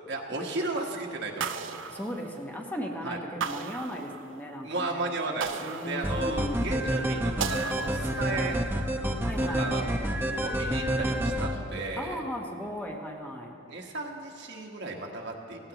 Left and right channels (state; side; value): normal; both; correlation 0.51